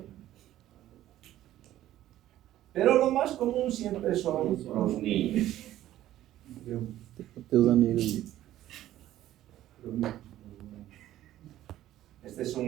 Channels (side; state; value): left; quieter; 13.6 dB